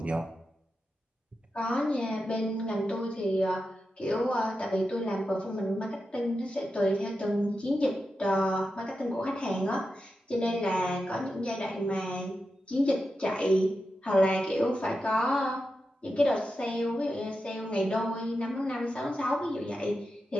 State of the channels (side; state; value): both; normal; correlation 0.89